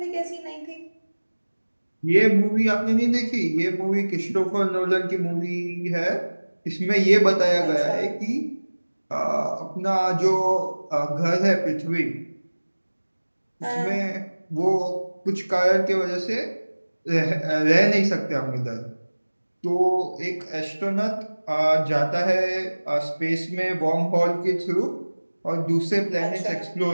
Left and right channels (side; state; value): both; inverted; correlation -1.00